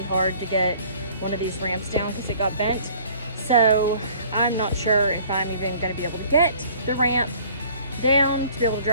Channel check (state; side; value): inverted; both; correlation -0.52